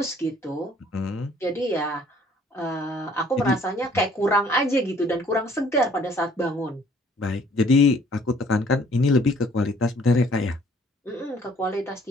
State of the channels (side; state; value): both; normal; correlation 0.58